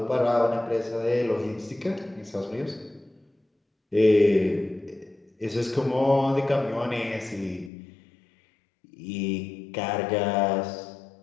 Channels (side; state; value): right; drops out; at 7.7 s